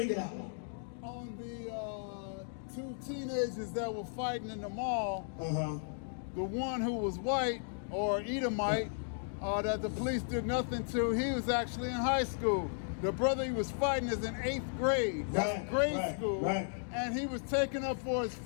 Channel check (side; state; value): right; silent; digital silence